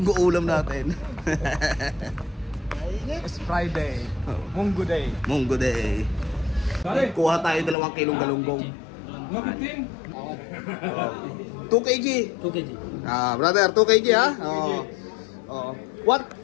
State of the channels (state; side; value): drops out; right; at 7.8 s